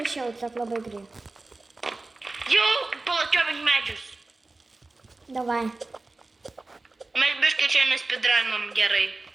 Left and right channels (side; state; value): left; quieter; 3.3 dB